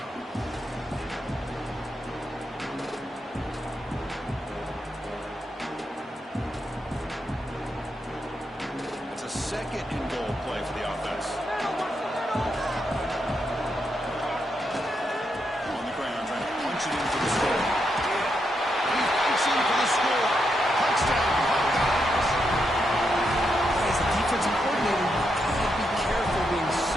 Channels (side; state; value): both; normal; correlation 0.82